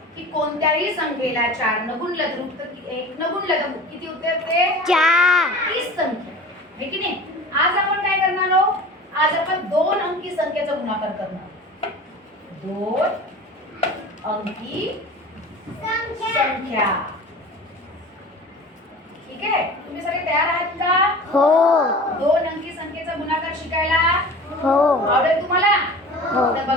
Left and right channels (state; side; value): normal; both; correlation 0.38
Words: की कोणत्याही संख्येला 4 न गुणलं तर उत्तर 1 न गुणलं तर किती उत्तर येते? 4 तीच संख्या आहे की नाही. आज आपण काय करणार आहोत? आज आपण 2 अंकी संख्येचा गुणाकार करणार. 2 अंकी संख्या. ठीक आहे. तुम्ही सगळे तयार आहात का? हो 2 अंकी संख्येचा गुणाकार शिकायला हो आवडेल तुम्हाला? हो. तर